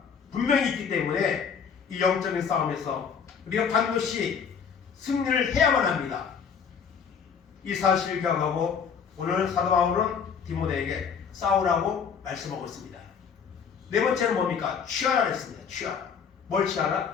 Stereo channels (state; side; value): quieter; right; 6.7 dB